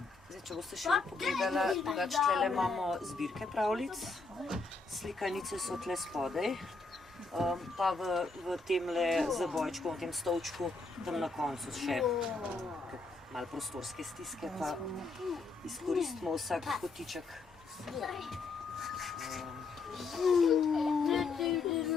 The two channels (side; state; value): right; quieter; 3.9 dB